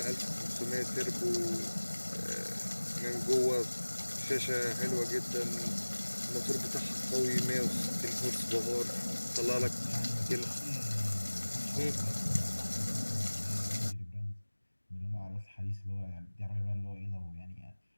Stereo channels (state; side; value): inverted; both; correlation -1.00